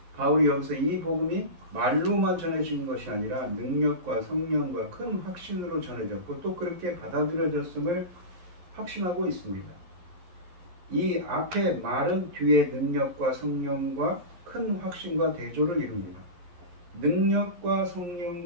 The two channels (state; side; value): late; left; 11 ms